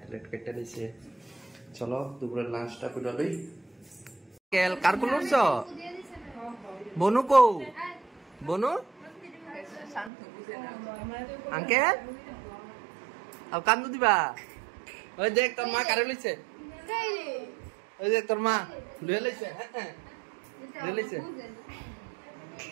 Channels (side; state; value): left; drops out; at 10.1 s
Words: ট্যালাড কেটে নিছে চলো দুপুরের লাঞ্চটা করে লই কেল কার কোন উঠছ বনু কো বনু আঙ্কেল আর কান্দু দিবা ওই দেখ তোর মা কারে লইছে ওই দেখ তোর মা লইয়া লইছে হ্যাঁ লইয়া লইছে